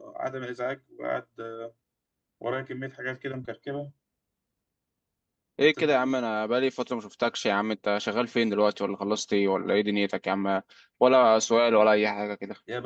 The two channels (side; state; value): both; identical; correlation 1.00